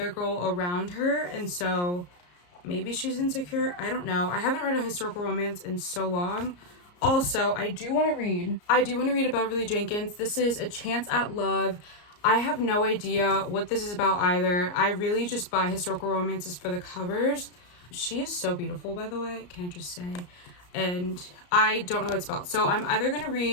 girl around her, and so maybe she's insecure. I don't know. I haven't read a historical romance in so long. Also, I do want to read a Beverly Jenkins. This is A Chance at Love. I have no idea what this is about either. I really just buy historical romances for the covers. She is so beautiful, by the way, can I just say? And I don't know what it's about. So I'm either going to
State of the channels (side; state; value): right; late; 34 ms